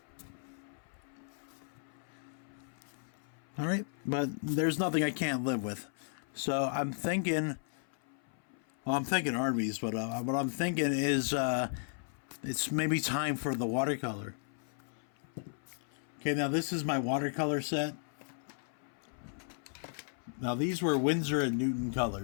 All right, but there's nothing I can't live with. So I'm thinking, well, I'm thinking Arby's, but what I'm thinking is it's maybe time for the watercolor. Okay, now this is my watercolor set. Now these were Winsor and Newton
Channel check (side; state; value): right; silent; 54 dB below the other